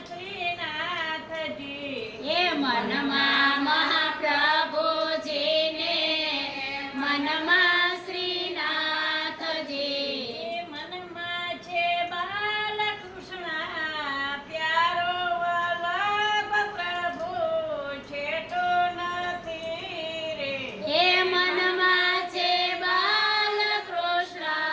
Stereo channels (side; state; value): both; identical; correlation 1.00